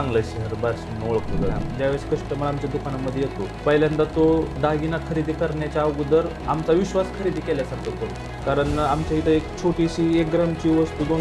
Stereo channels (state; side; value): identical; both; correlation 1.00